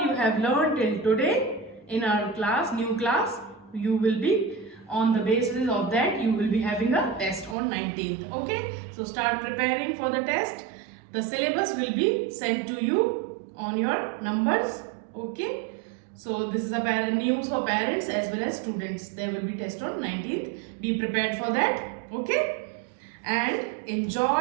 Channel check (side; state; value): left; drops out; at 7.6 s